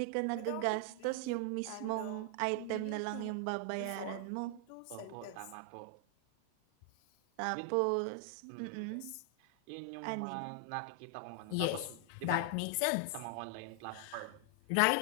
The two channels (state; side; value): different; both; correlation 0.00